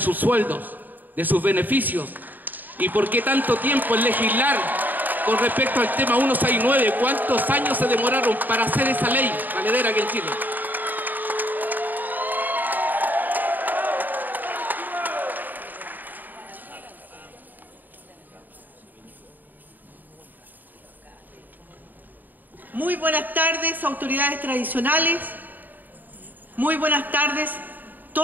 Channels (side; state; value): left; late; 0.088 ms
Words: sueldos, de sus beneficios? ¿Y por qué tanto tiempo en legislar con respecto al tema 169? ¿Cuántos años se demoraron para hacer esa ley valedera aquí en Chile? Muy buenas tardes, autoridades tradicionales. Muy buenas tardes,